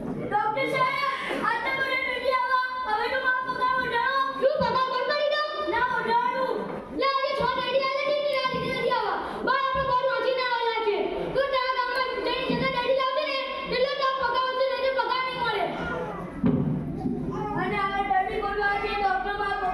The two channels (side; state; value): both; identical; correlation 1.00